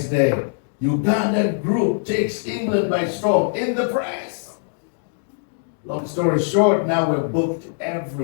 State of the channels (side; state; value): right; silent; digital silence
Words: day, Ugandan group takes England by storm in the press. Long story short, now we're booked